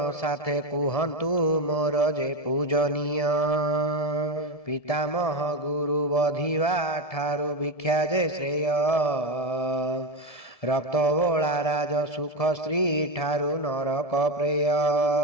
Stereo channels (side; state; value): right; late; 1.7 ms